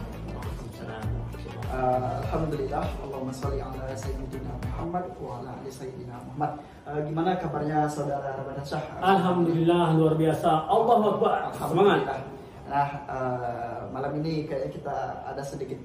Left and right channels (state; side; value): identical; both; correlation 1.00